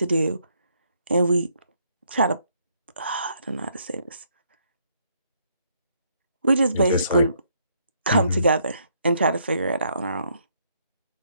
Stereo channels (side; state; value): both; inverted; correlation -0.71